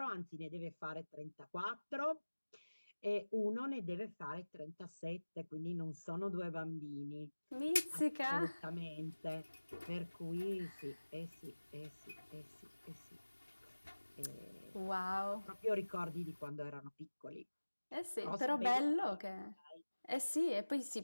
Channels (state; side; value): inverted; both; correlation -1.00